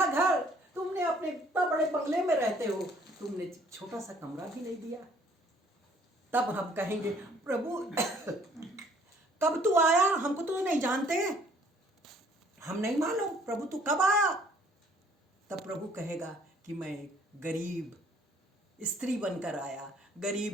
घर, तुमने अपने इतना बड़े बंगले में रहते हो, तुमने छोटा सा कमरा भी नहीं दिया। तब हम कहेंगे प्रभु कब तू आया, हमको तो नहीं जानते, हम नहीं मालूम प्रभु तू कब आया। तब प्रभु कहेगा कि मैं गरीब स्त्री बनकर आया,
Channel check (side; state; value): both; normal; correlation 0.59